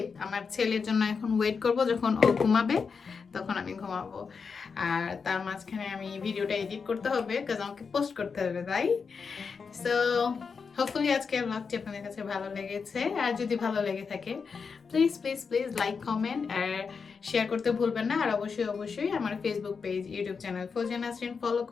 আমার ছেলের জন্য এখন ওয়েট করব, যখন ও ঘুমাবে তখন আমি ঘুমাবো। আর তার মাঝখানে আমি ভিডিওটা এডিট করতে হবে, কাজ আমাকে পোস্ট করতে হবে, তাই। সো হোপফুলি আজকের ব্লগটি আপনাদের কাছে ভালো লেগেছে, আর যদি ভালো লেগে থাকে please please please like, comment আর শেয়ার করতে ভুলবেন না। আর অবশ্যই অবশ্যই আমার Facebook page, YouTube channel Fauzia Nasrin follow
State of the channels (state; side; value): quieter; right; 5.5 dB